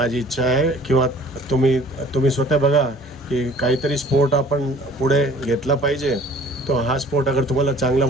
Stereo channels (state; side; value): normal; both; correlation 0.51